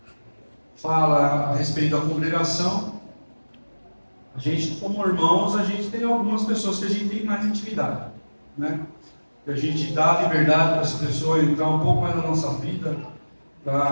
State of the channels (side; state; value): both; inverted; correlation -1.00